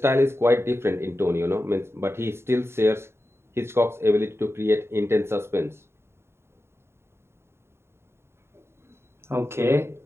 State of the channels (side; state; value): left; late; 0.12 ms